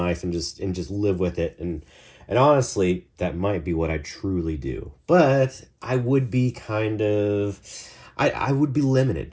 and just live with it. And honestly, that might be what I truly do. But I would be I would be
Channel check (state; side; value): identical; both; correlation 1.00